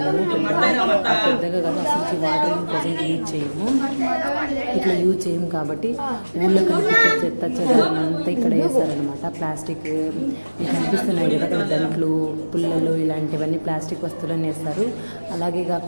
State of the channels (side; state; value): both; inverted; correlation -1.00